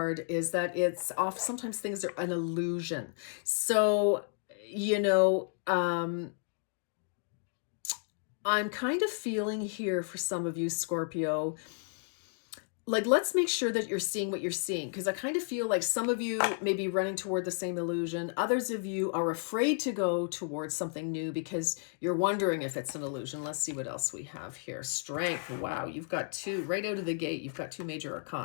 is that it's sometimes things are an illusion. So, I'm kind of feeling here for some of you, Scorpio, like, let's make sure that you're seeing what you're seeing, because I kind of feel like some of you may be running toward the same illusion. Others of you are afraid to go towards something new because you're wondering if it's an illusion. Let's see what else we have here. Strength. Wow, you've got two right out of the gate. You've got two major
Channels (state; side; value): silent; right; 56 dB below the other